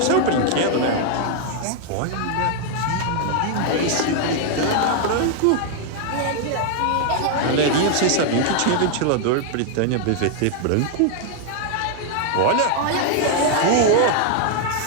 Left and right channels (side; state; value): both; different; correlation 0.00